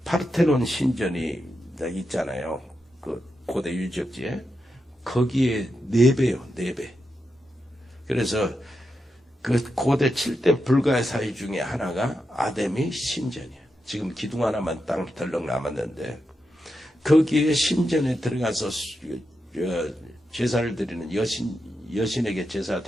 파르테논 신전이 있잖아요. 그 고대 유적지에 거기에 4배요, 4배. 그래서 그 고대 7대 불가의 사위 중에 하나가 아데미 신전이에요. 지금 기둥 하나만 땅 덜렁 남았는데 거기에 신전에 들어가서 제사를 드리는 여신에게 제사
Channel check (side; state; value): both; normal; correlation 0.87